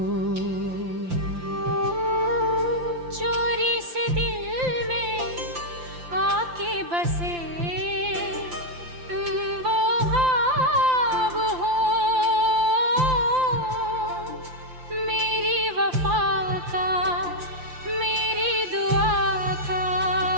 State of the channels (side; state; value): left; late; 5.8 ms